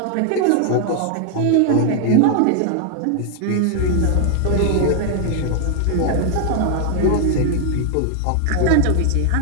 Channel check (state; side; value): different; both; correlation 0.00